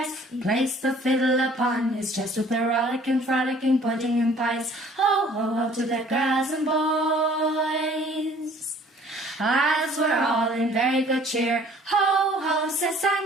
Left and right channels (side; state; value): both; normal; correlation 0.54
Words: He placed the fiddle upon his chest, with the rollicking, frolicking, pudding and pies. Ho, ho, ho, to the girls and boys. As we're all in very good cheer. Ho, ho, says